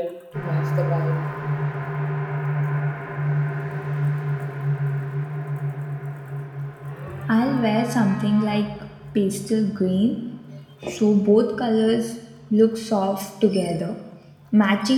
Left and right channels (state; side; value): identical; both; correlation 1.00